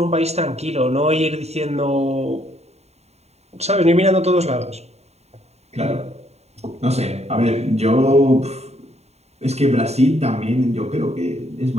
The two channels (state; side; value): late; left; 0.31 ms